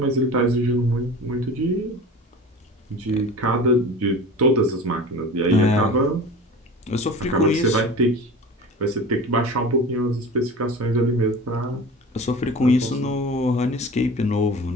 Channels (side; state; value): both; normal; correlation 0.36